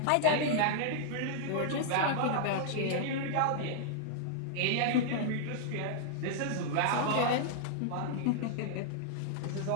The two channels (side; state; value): both; different; correlation -0.01